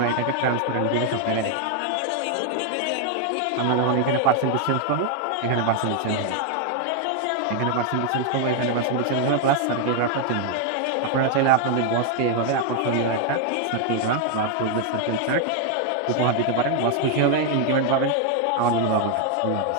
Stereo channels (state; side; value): different; both; correlation 0.00